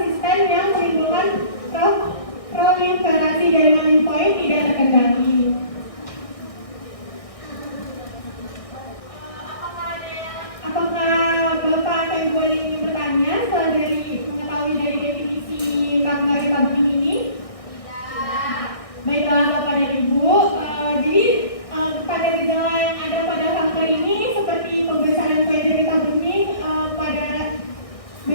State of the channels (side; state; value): right; late; 1.6 ms